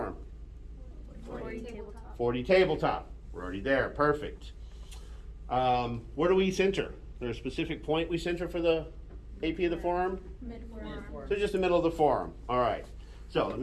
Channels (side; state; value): both; identical; correlation 1.00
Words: 40 tabletop. 40 tabletop. We're already there. Perfect. Where do we center? Is there a specific point we center for the AP of the forearm? Mid-forearm. So just the middle of the forearm. All right. So let